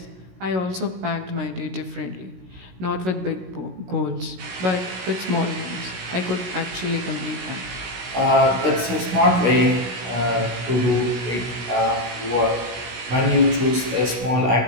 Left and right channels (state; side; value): late; left; 16 ms